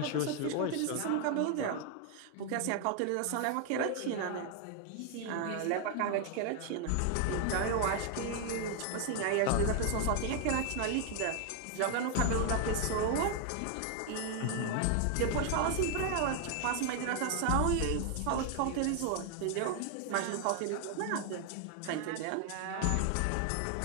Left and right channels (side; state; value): both; different; correlation 0.00